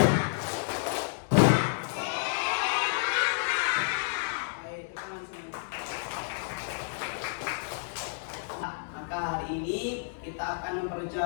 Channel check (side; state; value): right; silent; digital silence